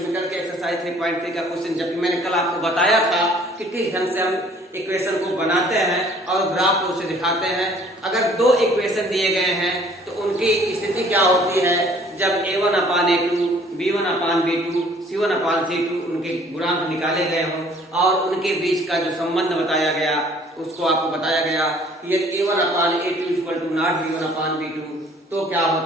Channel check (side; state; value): both; normal; correlation 0.56